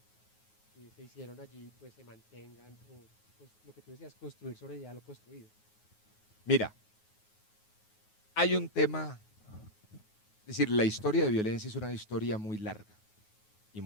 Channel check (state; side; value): late; right; 9.4 ms